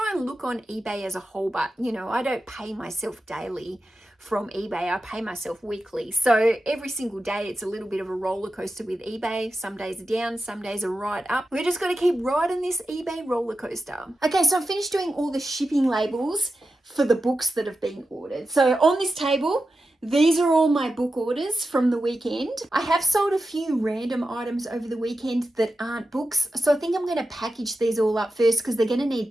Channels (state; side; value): normal; both; correlation 0.91